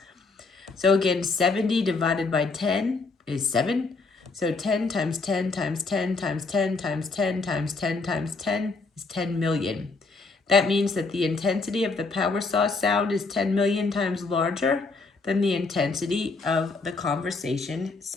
So again, 70 divided by 10 is 7. So 10 times 10 times 10 times 10 times 10 times 10 times 10 is 10 million. That means that the intensity of the power saw sound is 10 million times larger than the intensity of the conversation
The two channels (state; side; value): quieter; right; 3.9 dB